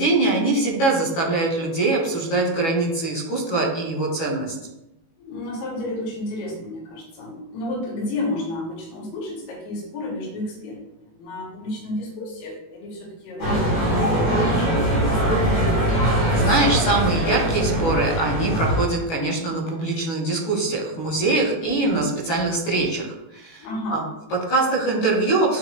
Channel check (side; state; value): right; late; 18 ms